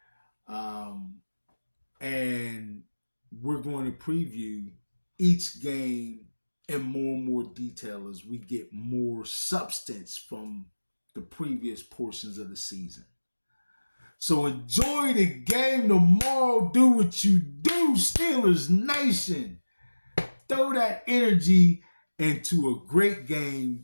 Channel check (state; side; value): inverted; both; correlation -1.00